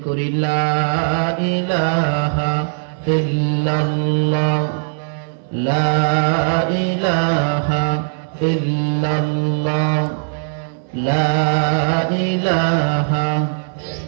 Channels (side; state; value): left; silent; digital silence